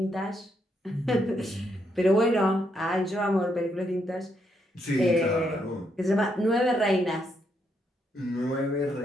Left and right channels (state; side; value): normal; both; correlation 0.77